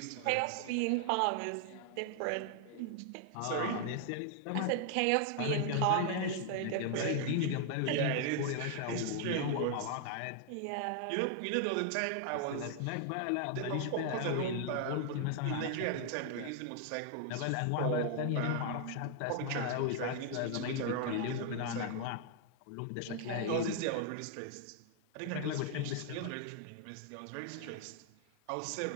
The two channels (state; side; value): different; both; correlation 0.00